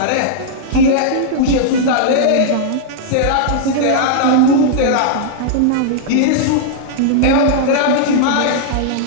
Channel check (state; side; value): different; both; correlation -0.01